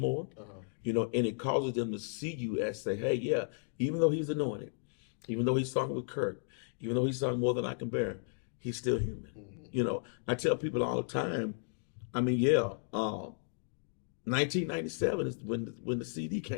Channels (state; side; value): silent; right; digital silence